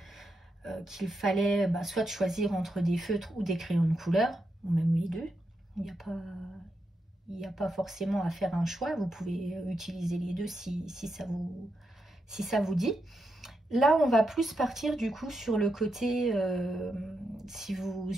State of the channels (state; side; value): normal; both; correlation 0.84